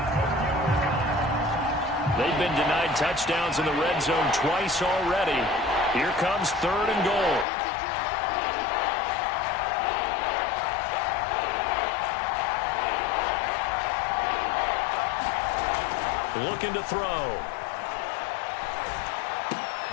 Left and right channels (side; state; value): right; drops out; at 7.5 s